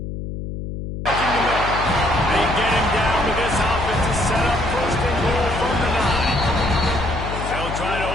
They get him down to this offense to set up first and goal from the 9. They'll try to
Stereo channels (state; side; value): noise; left; hum, 7 dB below the sound